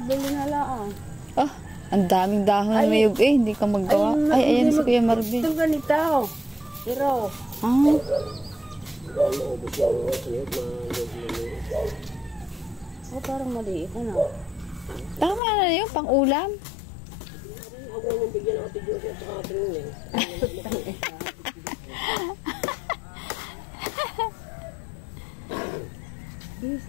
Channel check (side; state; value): right; drops out; at 15.4 s